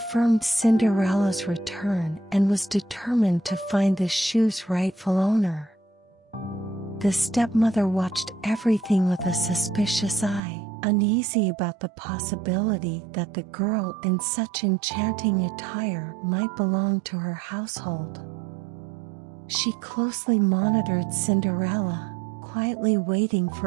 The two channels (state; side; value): drops out; left; at 10.4 s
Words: Cinderella's return and was determined to find the shoe's rightful owner. The stepmother watched everything with a suspicious eye, uneasy about the possibility that the girl in such enchanting attire might belong to her household. She closely monitored Cinderella, quietly waiting